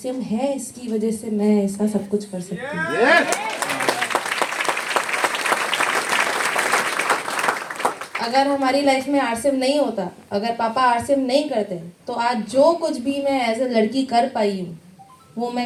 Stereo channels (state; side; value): identical; both; correlation 1.00